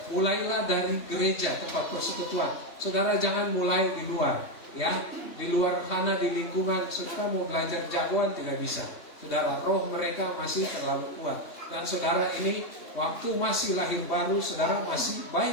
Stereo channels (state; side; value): late; right; 3.2 ms